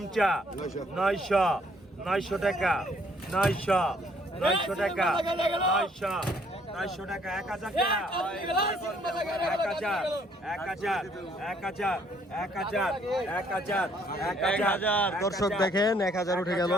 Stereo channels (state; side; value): normal; both; correlation 0.64